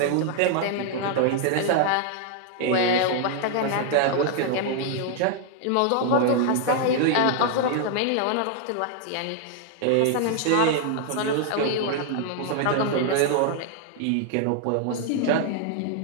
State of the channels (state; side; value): different; both; correlation 0.00